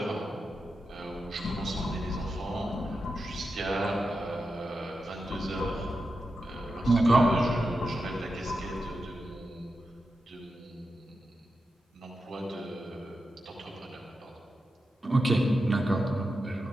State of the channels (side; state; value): both; normal; correlation 0.89